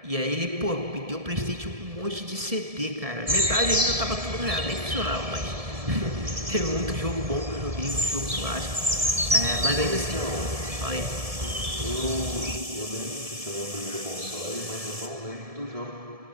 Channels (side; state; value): left; late; 1.7 ms